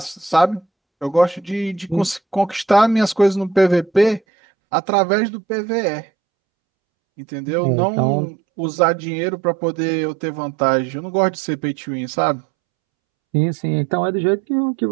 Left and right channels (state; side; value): drops out; left; at 4.2 s